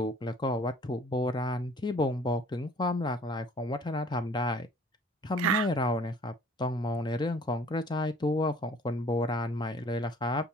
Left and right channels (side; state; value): both; normal; correlation 0.53